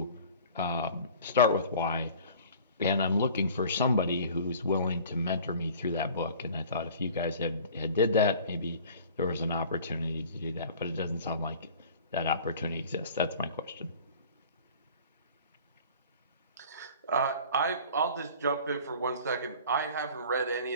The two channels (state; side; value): inverted; both; correlation -0.46